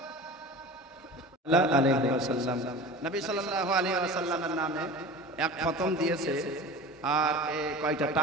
আলাইহি ওয়াসাল্লাম। নবী সাল্লাল্লাহু আলাইহি ওয়াসাল্লামের নামে এক খতম দিয়েছে আর কয়টা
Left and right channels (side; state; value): both; normal; correlation 0.35